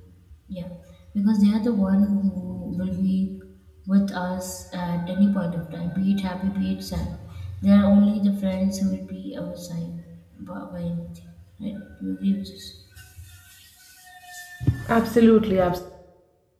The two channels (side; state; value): both; identical; correlation 1.00